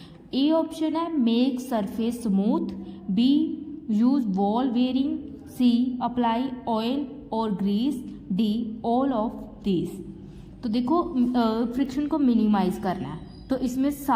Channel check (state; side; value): identical; both; correlation 1.00